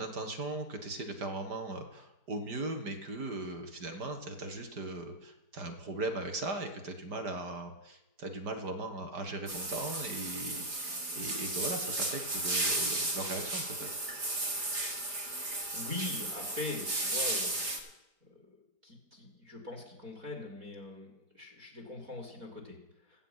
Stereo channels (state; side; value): late; left; 4.9 ms